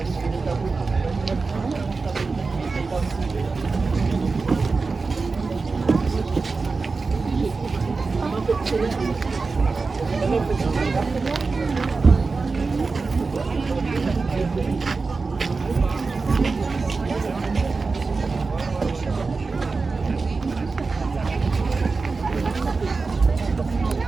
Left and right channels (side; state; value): left; quieter; 4.2 dB